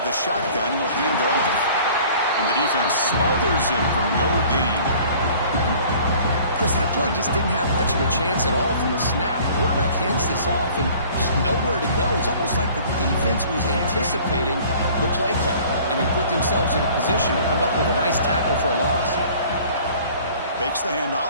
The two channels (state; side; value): inverted; both; correlation -0.50